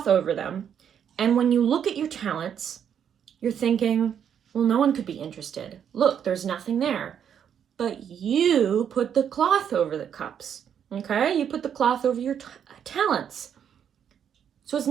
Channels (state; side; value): quieter; left; 8.5 dB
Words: over them, and when you look at your talents, you're thinking, well, no one could be interested. Look, there's nothing there. But you put the cloth over the cups, okay? You put the cloth over your talents. So it's